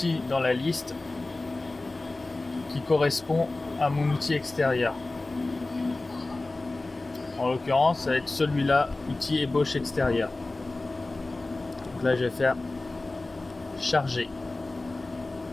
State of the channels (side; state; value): right; quieter; 3.1 dB